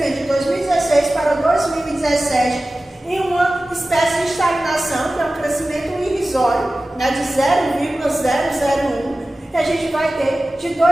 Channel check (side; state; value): both; normal; correlation 0.96